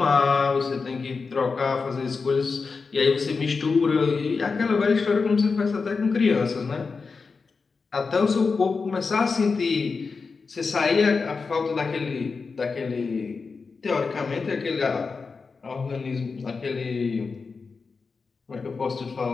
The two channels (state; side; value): quieter; right; 4.7 dB